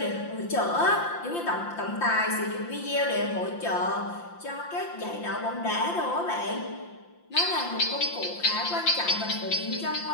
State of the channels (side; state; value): right; late; 5.8 ms